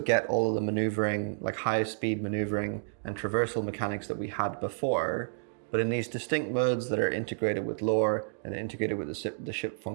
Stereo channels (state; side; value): silent; left; digital silence